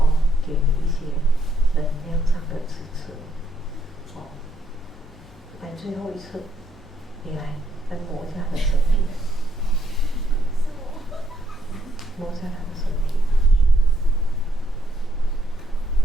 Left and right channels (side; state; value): both; normal; correlation 0.74